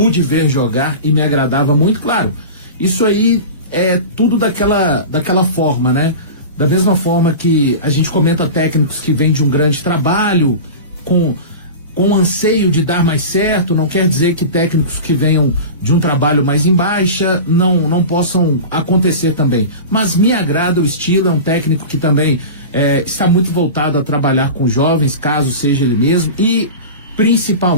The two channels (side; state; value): both; inverted; correlation -0.30